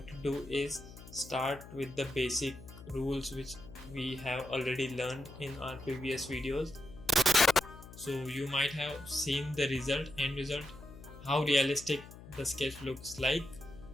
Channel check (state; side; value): noise; left; hum, 16 dB below the sound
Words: to do is start with the basic rules which we have already learned in our previous videos. So you might have seen the end result, how realistic the sketch looks like.